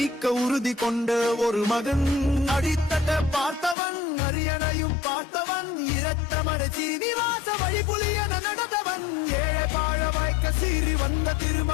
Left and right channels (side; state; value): right; drops out; at 3.8 s